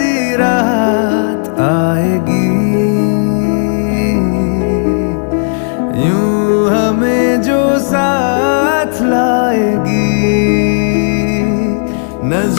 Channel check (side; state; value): right; silent; digital silence